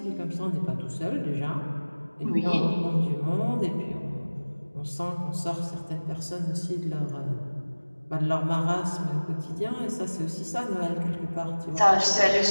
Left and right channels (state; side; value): inverted; both; correlation -1.00